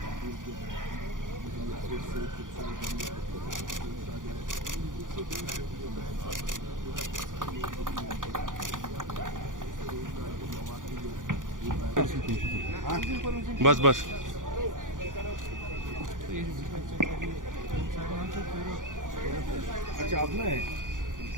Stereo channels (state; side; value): late; left; 0.88 ms